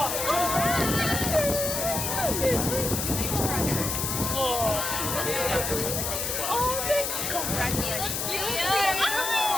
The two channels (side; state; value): left; noise; hiss, 1 dB below the sound